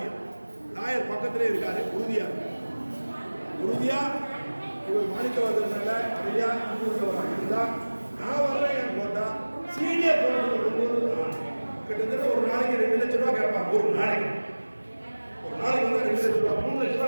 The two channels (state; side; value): inverted; both; correlation -1.00